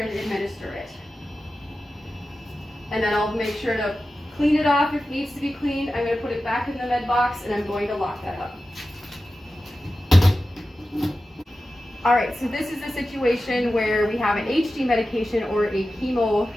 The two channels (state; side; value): normal; both; correlation 0.93